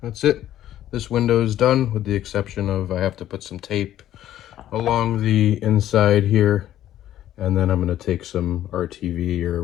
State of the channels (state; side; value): quieter; right; 12.4 dB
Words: that's it. This window is done with the exception of I have to put some tape along the inside here, and then I'm going to take some RTV